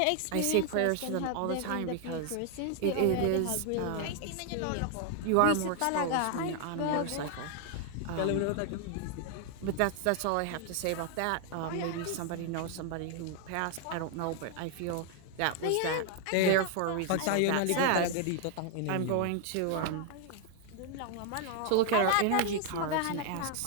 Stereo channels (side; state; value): both; different; correlation 0.00